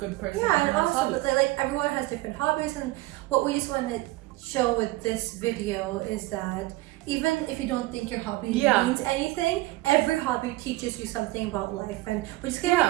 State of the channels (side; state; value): left; quieter; 19.1 dB